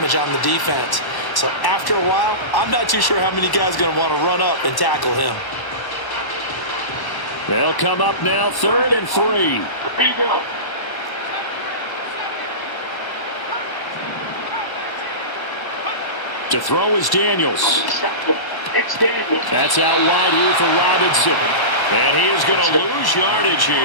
on the defense. So after a while, I'm not too sure how many guys are going to want to run up and tackle him. They'll come up now 3rd and 3. To throw is Daniels. That's out wide here for Robinson. And he is going to lose yardage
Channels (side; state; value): right; late; 1.1 ms